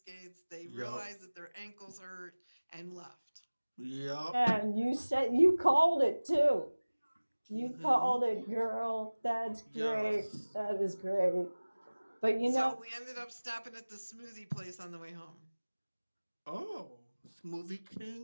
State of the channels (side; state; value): both; inverted; correlation -1.00